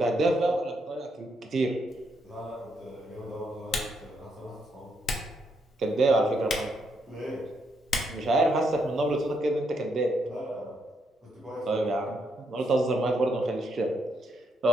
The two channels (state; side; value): normal; both; correlation 0.77